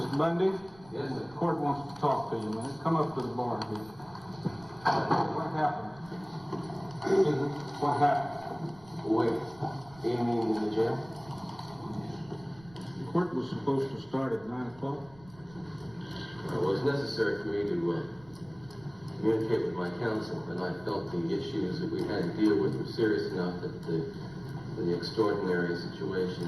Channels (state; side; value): noise; right; rumble, 24 dB below the sound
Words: Bundy? Yes, sir. The court wants to talk to you, man. Come up to the bar here. What happened? What happened? Wait, do you mean in the jail? The court was supposed to start at 9 o'clock. Well, it was necessary for me to communicate with my counsel, and I felt the issues that we had to deal with were serious enough that the extraordinary